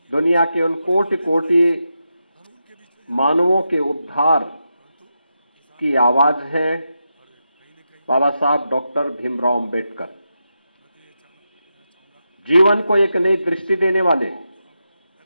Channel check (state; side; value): inverted; both; correlation -0.87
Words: दुनिया के उन कोटि कोटि मानवों के उद्धार की आवाज है बाबा साहब डॉक्टर भीमराव अंबेडकर। जीवन को एक नई दृष्टि देने वाले,